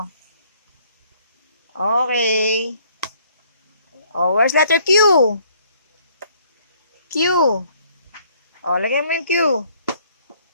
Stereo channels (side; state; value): both; inverted; correlation -0.62